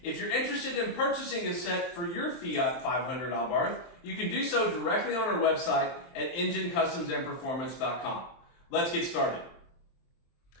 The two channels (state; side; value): late; right; 23 ms